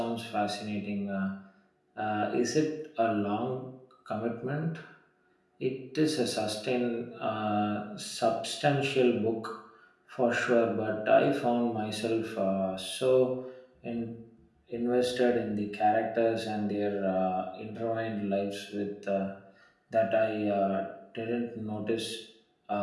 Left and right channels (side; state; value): both; identical; correlation 1.00